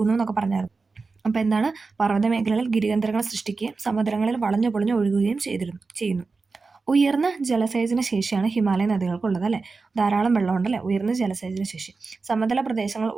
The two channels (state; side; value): quieter; left; 4.2 dB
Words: എന്നൊക്കെ പറഞ്ഞായിരുന്നു. അപ്പോൾ എന്താണ്, പർവ്വത മേഖലകളിൽ ഗിരികേന്ദ്രങ്ങൾ സൃഷ്ടിക്കുകയും സമുദ്രങ്ങളിൽ വളഞ്ഞു ഒഴുകുകയും ചെയ്യുന്നു. ഉയർന്ന ജലസേചന ശേഷിയാണ് ഹിമാലയ നദികൾക്കുള്ളത് അല്ലേ. ധാരാളം വെള്ളമുണ്ടല്ലേ, ഉയർന്ന ജലസേചന ശേഷി. സമതല പ്രദേശങ്ങൾ